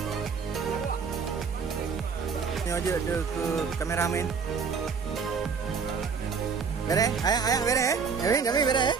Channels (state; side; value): quieter; left; 5.7 dB